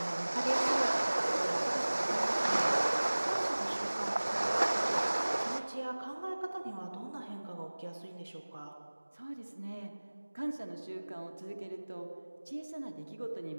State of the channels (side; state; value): both; inverted; correlation -1.00